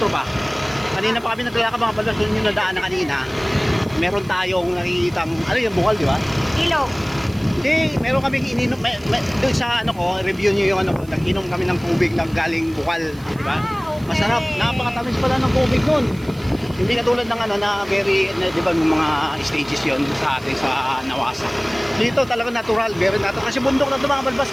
ba? Kanina pa kami naglalakad mga balbas. Doon yung nadaan na kanina. Meron tayong nakikitang, ano yung bukal di ba? Ilog. Hindi, meron kaming ininom, doon sa ano ko, review nyo yung ano ko, nag-inom kami ng tubig na galing bukal, di ba? Okay. Masarap, napakatamis pala ng tubig nun. Hindi katulad ng ano na very, di ba yung mga stages yon sa atin sa Nawasa. Dito talaga natural, very natural. Kasi bundok na ito mga balbas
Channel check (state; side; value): noise; right; hiss, 25 dB below the sound